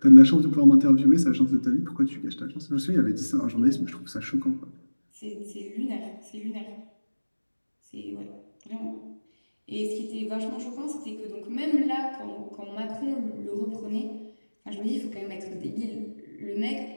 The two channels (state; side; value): inverted; both; correlation -1.00